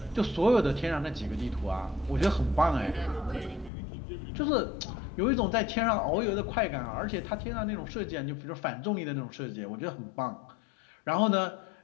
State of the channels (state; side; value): drops out; right; at 3.7 s